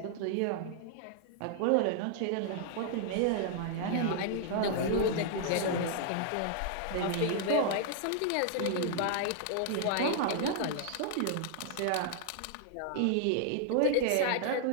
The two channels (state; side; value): different; both; correlation -0.01